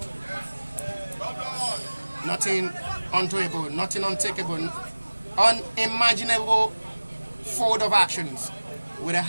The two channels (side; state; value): both; inverted; correlation -1.00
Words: Nothing undoable, nothing untakeable, unimaginable forward of actions with a